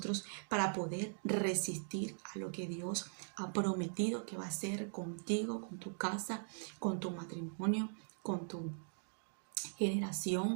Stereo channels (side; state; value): left; silent; digital silence